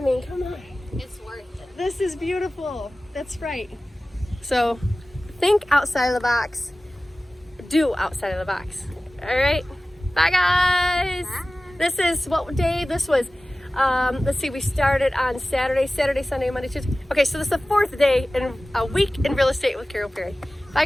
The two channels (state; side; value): normal; both; correlation 0.97